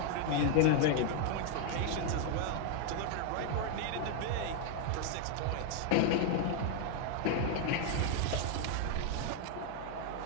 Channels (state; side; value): different; both; correlation 0.01